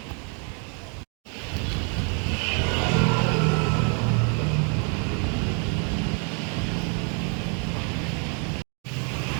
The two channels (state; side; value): quieter; left; 38.8 dB